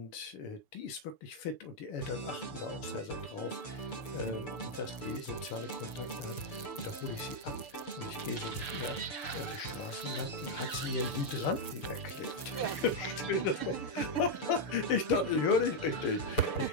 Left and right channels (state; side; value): late; right; 6.8 ms